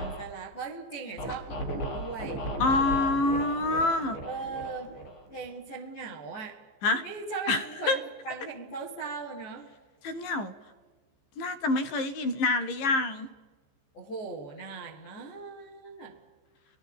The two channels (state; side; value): late; right; 14 ms